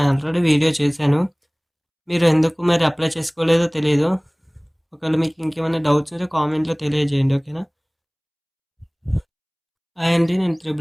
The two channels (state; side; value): identical; both; correlation 1.00